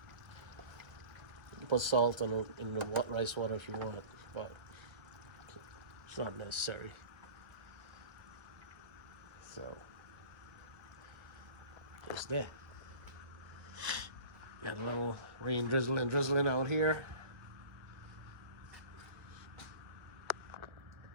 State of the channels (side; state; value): left; late; 1.6 ms